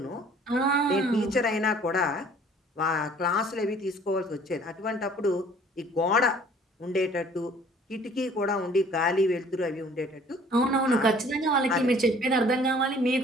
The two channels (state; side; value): normal; both; correlation 0.54